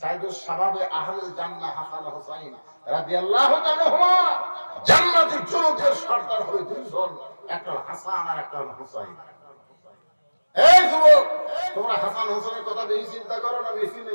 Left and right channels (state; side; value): inverted; both; correlation -1.00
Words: শাবাবে আহলিল জান্নাহ হাসান হুসাইন রাদিয়াল্লাহু তাআলা হুমা জান্নাতি যুবকদের সরদার হবে দুইজন, একটা হাসান আর একটা হুসাইন। এই যুবক, তোমরা হাসান হুসাইনের কথা বেশি চিন্তা করো না, বেশি